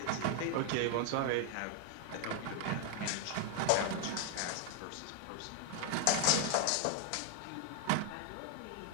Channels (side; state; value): both; different; correlation 0.00